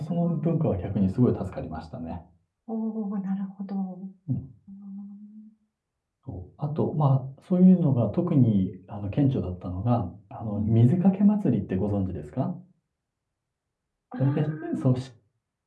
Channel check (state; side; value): identical; both; correlation 1.00